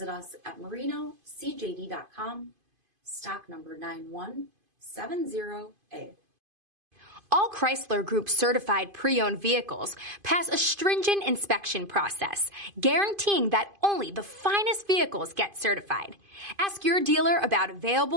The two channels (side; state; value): left; late; 2.5 ms